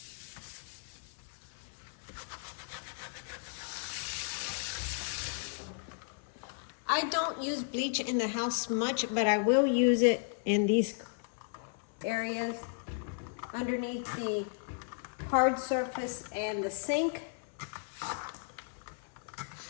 I don't use bleach in the house much, but I will use it in these areas underneath the hard surface and the sink,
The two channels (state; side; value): silent; right; 55 dB below the other